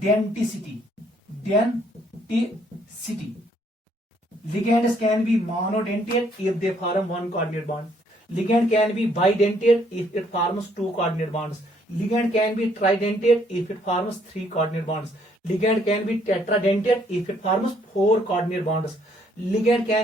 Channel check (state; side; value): normal; both; correlation 0.67